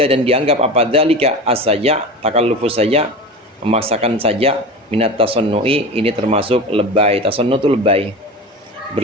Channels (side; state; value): both; normal; correlation 0.30